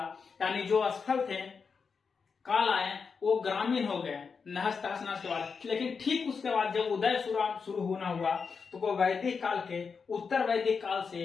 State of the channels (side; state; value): right; quieter; 5.5 dB